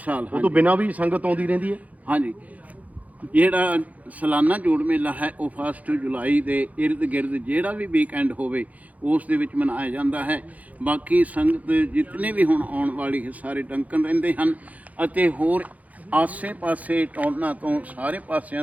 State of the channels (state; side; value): late; left; 0.074 ms